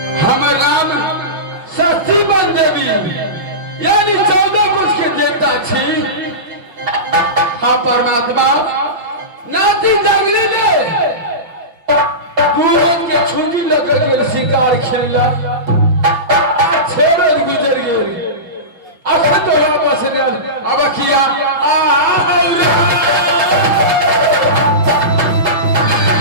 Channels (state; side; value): late; left; 6.1 ms